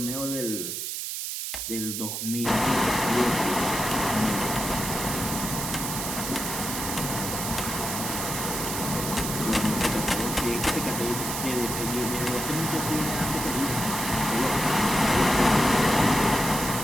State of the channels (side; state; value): right; noise; hiss, 4 dB below the sound